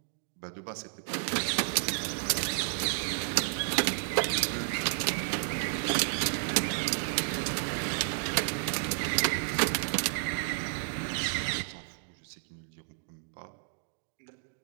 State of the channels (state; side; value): silent; left; digital silence